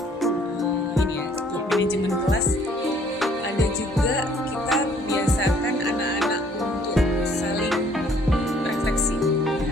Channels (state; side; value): normal; both; correlation 0.60